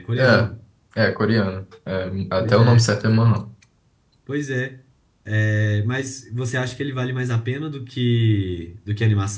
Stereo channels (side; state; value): both; identical; correlation 1.00